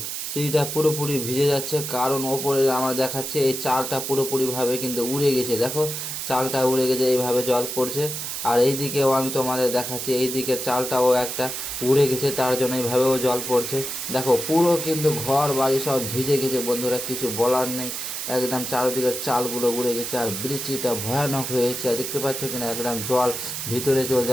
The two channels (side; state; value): right; noise; hiss, 5 dB below the sound